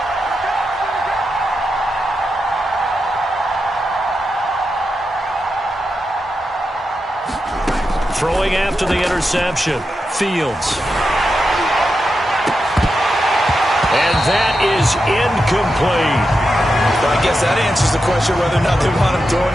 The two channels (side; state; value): both; normal; correlation 0.88